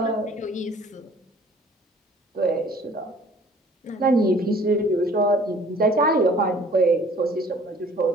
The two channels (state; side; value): normal; both; correlation 0.53